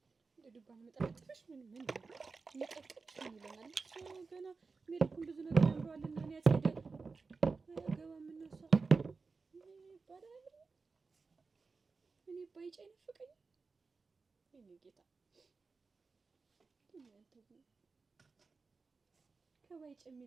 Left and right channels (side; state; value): left; quieter; 4.4 dB